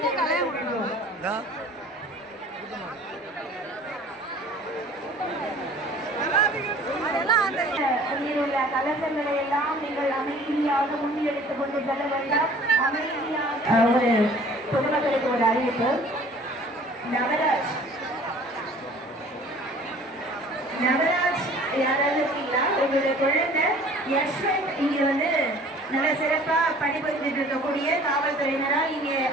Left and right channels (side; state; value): both; normal; correlation 0.50